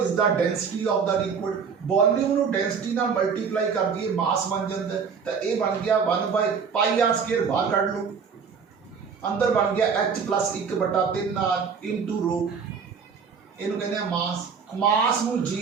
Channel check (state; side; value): quieter; left; 6.1 dB